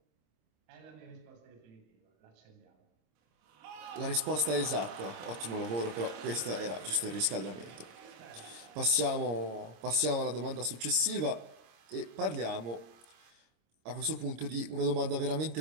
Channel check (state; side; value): late; left; 26 ms